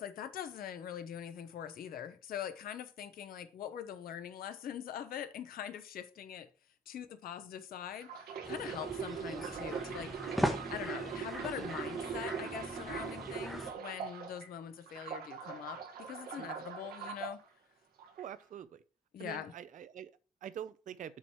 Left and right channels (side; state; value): both; normal; correlation 0.47